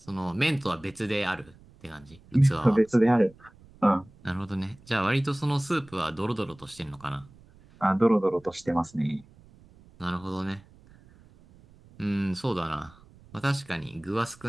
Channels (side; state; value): right; noise; rumble, 25 dB below the sound